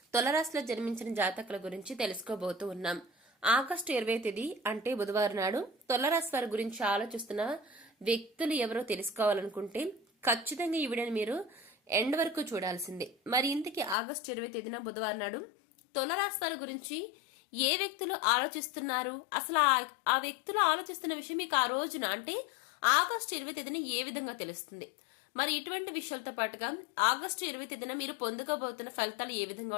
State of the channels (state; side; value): drops out; right; at 14.0 s